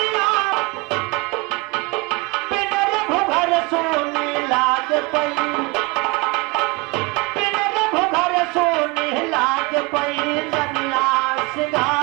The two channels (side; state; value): left; quieter; 25.6 dB